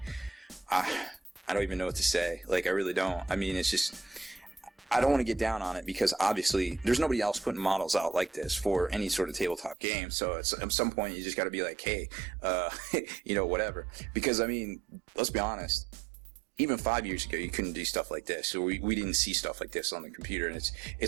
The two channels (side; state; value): left; drops out; at 9.8 s